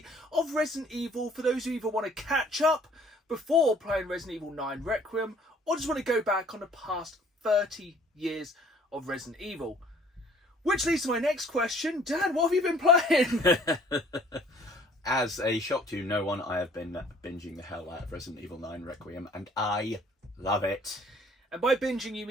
of Resident Evil for those who either want to catch up before playing Resident Evil 9 Requiem or just want to go back on the past 30 years of Resident Evil. Which leads to my next question. Dan, what have you been playing? As a shock to no one, I have been binging the hell out of Resident Evil 9 Requiem, and I love it. And by binging, you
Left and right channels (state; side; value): normal; both; correlation 0.56